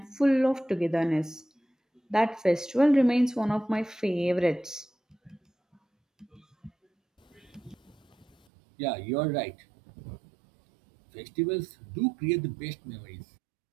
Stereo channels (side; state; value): left; drops out; at 8.3 s